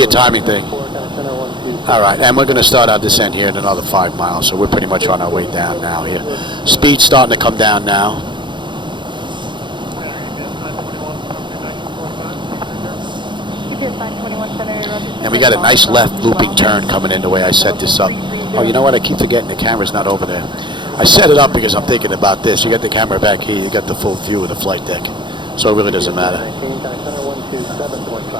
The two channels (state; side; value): late; left; 0.23 ms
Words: a timing thing. All right, and we're going to start our descent here in another 5 miles, so we're pretty much on our way down now here. Speed's starting to come down now. And we got a nice left looping turn coming in the way I set this up. Oh, you know what? I keep forgetting the camera's not over there. I set it up because I'm thinking about this. You got the camera back here. You got the full view of the flight deck. So it really doesn't matter.